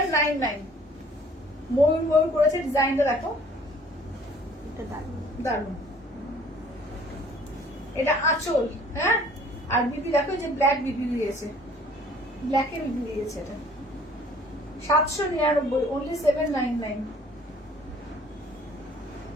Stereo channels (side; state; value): both; normal; correlation 0.55